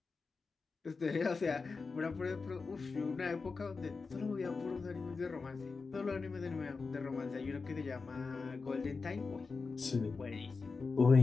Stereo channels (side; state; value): right; quieter; 4.5 dB